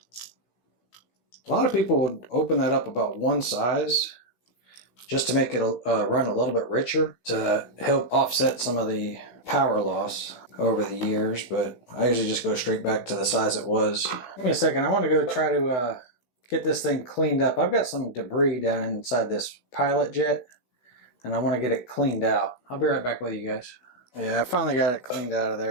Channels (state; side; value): late; right; 16 ms